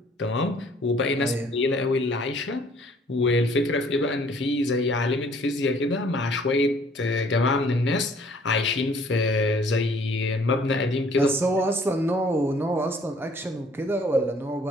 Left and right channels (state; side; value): normal; both; correlation 0.58